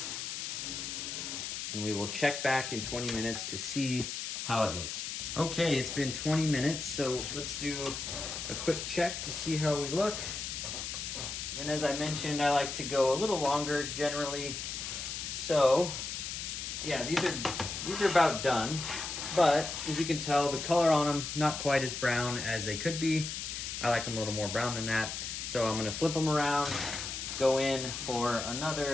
And we will check back in 20 minutes to see how it looks. Okay, it's been 20 minutes, so let's do a quick check to see how we look. And as I mentioned, I like to go a little longer generally. So, yeah, these are about done. But as you can tell, the color on them, not quite as brown as they could be. I like them a little more brown than that. So I'm gonna flip them around, go in for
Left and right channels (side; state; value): left; noise; hiss, 5 dB below the sound